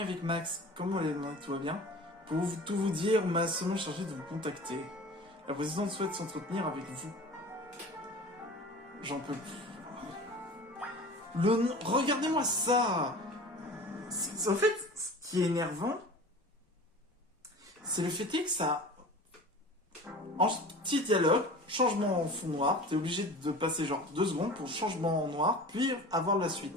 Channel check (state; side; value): normal; both; correlation 0.39